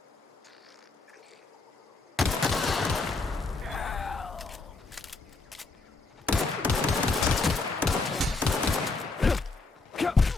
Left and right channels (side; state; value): right; quieter; 3.7 dB